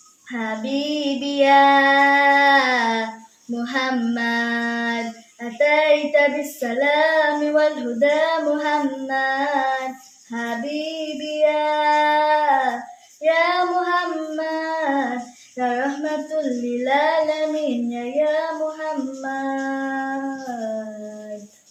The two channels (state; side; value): identical; both; correlation 1.00